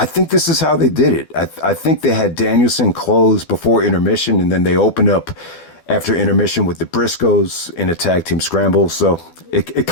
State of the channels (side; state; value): right; late; 12 ms